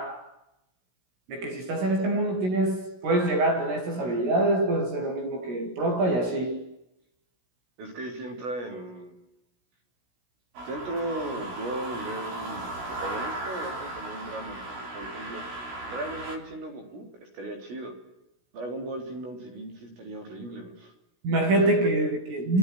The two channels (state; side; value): late; left; 16 ms